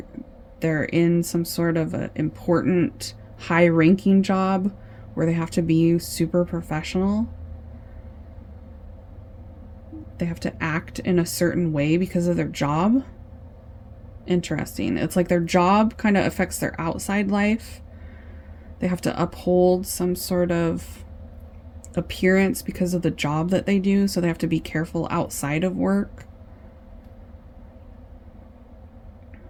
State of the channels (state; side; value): identical; both; correlation 1.00